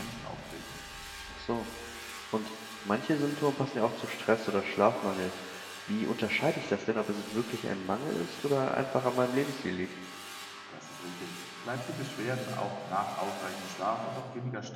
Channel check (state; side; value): identical; both; correlation 1.00